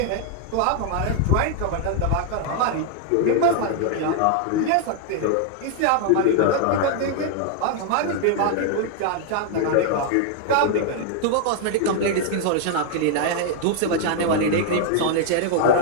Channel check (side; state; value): both; different; correlation 0.00